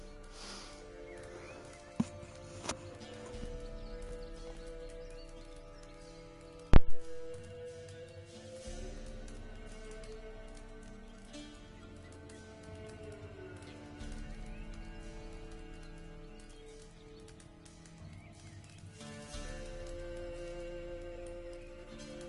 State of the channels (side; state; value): both; identical; correlation 1.00